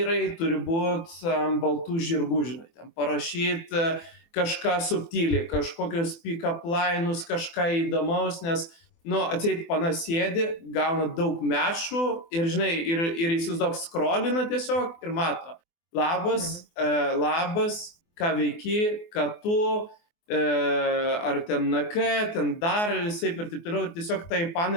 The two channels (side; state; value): right; late; 24 ms